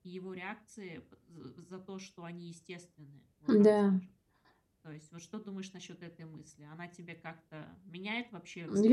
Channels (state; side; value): identical; both; correlation 1.00